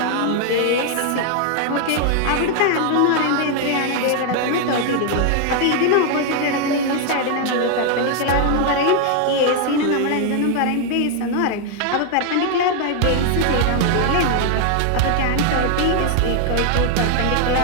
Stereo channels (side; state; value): both; different; correlation 0.00